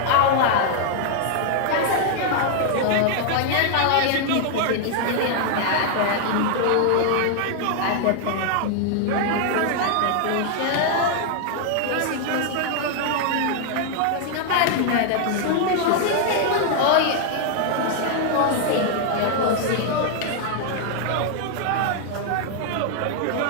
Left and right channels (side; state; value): both; different; correlation 0.00